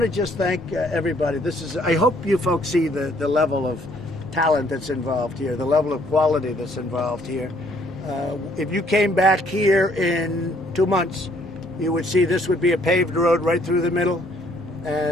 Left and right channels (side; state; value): both; normal; correlation 0.64